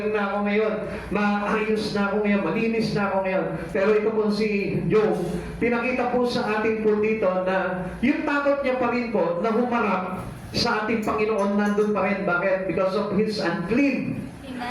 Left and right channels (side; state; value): both; identical; correlation 1.00